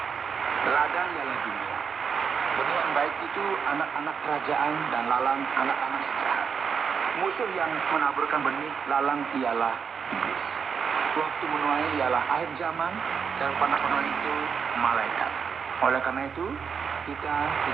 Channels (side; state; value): left; quieter; 6.5 dB